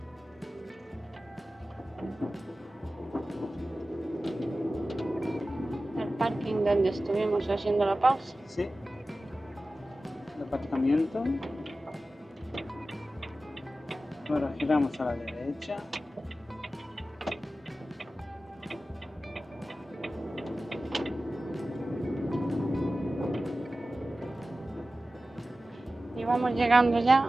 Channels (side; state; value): both; normal; correlation 0.95